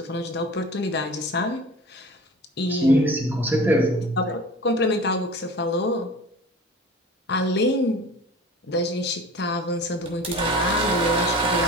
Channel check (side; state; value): both; normal; correlation 0.39